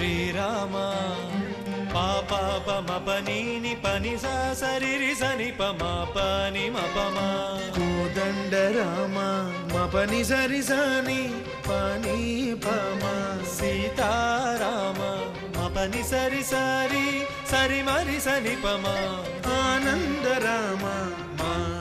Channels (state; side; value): identical; both; correlation 1.00